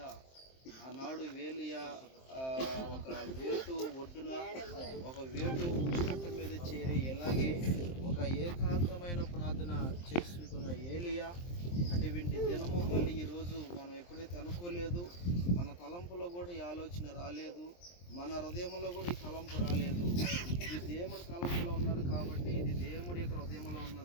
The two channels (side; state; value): right; late; 23 ms